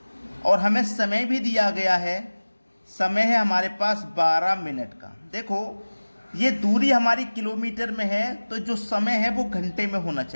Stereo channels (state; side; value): inverted; both; correlation -1.00